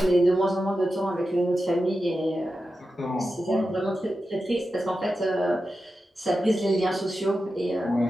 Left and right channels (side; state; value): both; normal; correlation 0.91